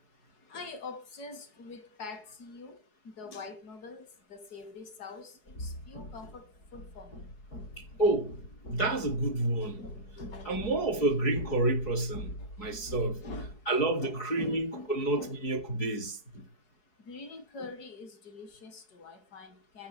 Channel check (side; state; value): right; late; 4.7 ms